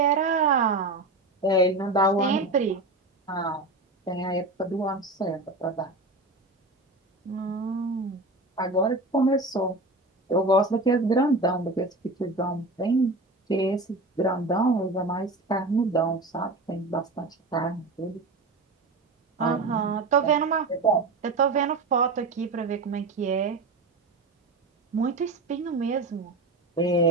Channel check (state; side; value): quieter; left; 3.0 dB